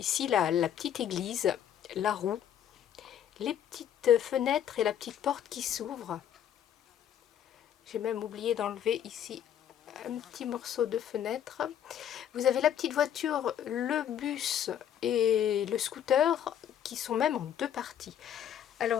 la petite église, la roue, les petites fenêtres et la petite porte qui s'ouvre. J'ai même oublié d'enlever ici un petit morceau de fenêtre. Vous avez la petite voiture, le bus et le scooter qui sont même en 2 parties.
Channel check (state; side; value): quieter; right; 9.8 dB